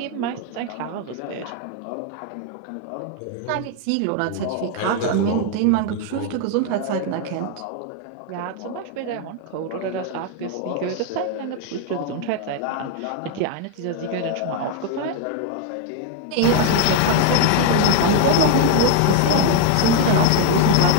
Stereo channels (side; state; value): both; different; correlation 0.00